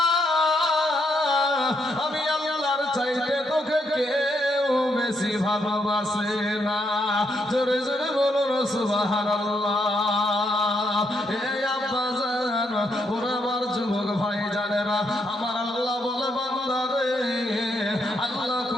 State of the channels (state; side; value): normal; both; correlation 0.77